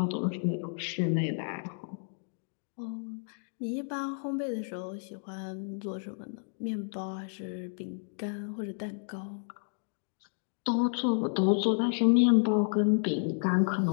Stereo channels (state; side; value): silent; right; digital silence